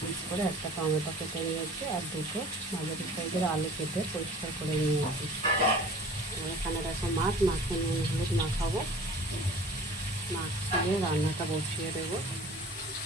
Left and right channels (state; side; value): normal; both; correlation 0.45